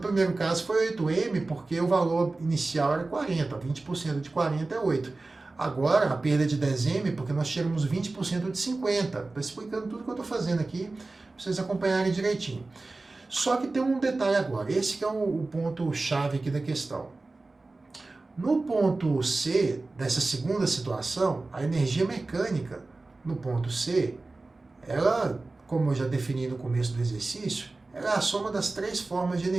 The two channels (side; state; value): left; quieter; 3.3 dB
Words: caso foi 8M, porque o valor inicial era 40, 20% de 40 é 8. Agora, a perda de 10M, porque nós tiramos 20% de 50. Estou explicando tudo que eu estou fazendo aqui, para vocês acompanharem direitinho. Só que tem um detalhe agora, esse que é o ponto-chave aqui da questão. No ponto C, dessa segunda situação, a energia mecânica no ponto C, ela, como eu já defini no começo do exercício, ela é a soma das 3 formas de